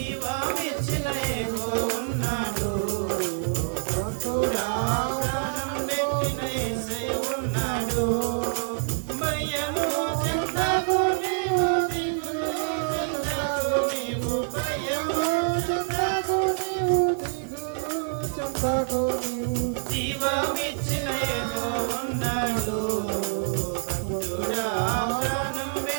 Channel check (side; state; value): left; silent; 61 dB below the other